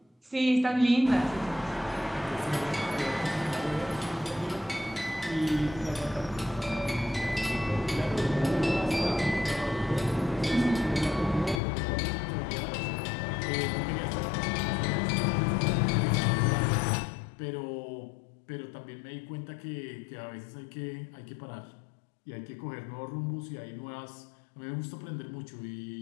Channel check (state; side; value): drops out; right; at 11.6 s